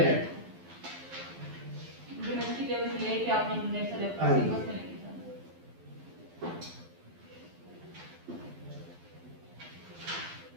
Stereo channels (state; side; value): late; left; 12 ms